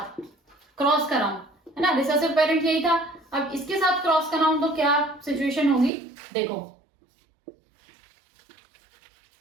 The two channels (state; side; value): drops out; left; at 5.9 s